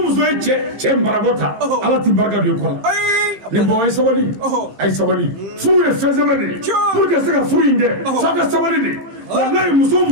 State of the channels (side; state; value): left; late; 15 ms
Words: ye cɛ marabɔ ta ala ti barika don i kɔ la ni bɔn a ye sabali furu ye fɛn sɛbɛn de ye pour que se ka furu in kɛ f'a ka sabali de walayi